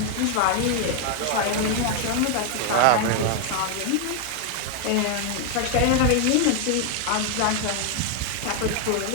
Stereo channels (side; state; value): both; different; correlation 0.00